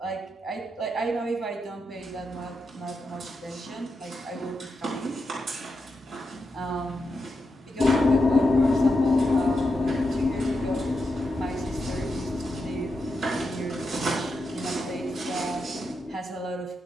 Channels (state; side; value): normal; both; correlation 0.86